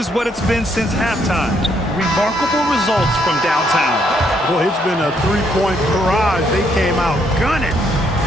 what it's been since halftime. Remarkable results from downtown. Boy, it's been a three-point barrage. They came out gunning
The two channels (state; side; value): normal; both; correlation 0.72